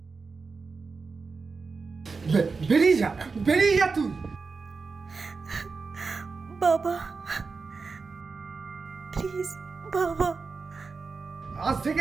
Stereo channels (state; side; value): quieter; left; 4.6 dB